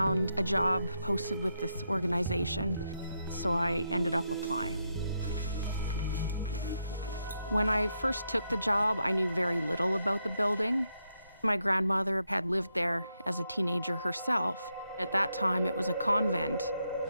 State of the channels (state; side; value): inverted; both; correlation -0.82